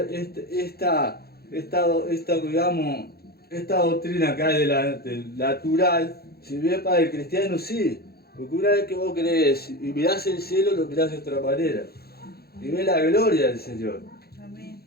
esta doctrina que hay del natural, si bien para el cristiano sí, porque una vez que vos crees y mirás el cielo, lo mirás de otra manera, y ves la gloria del Señor. Amén.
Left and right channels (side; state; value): right; late; 0.46 ms